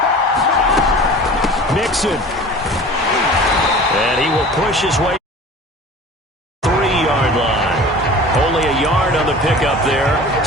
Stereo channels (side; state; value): both; normal; correlation 0.40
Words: Mixon. And he will push his way 3-yard line. Only a yard on the pickup there.